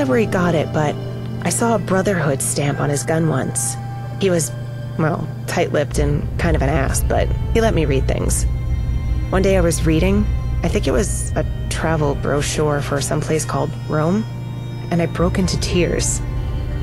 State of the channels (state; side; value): identical; both; correlation 1.00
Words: where he got it, but I saw a Brotherhood stamp on his gun once. He was, well, tight-lipped and kind of an ass, but he let me read things. One day I was reading, I think it was a travel brochure for some place called Rome, and I broke into tears.